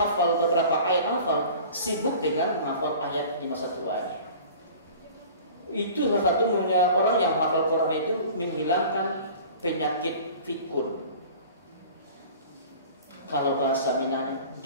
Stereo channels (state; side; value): inverted; both; correlation -0.43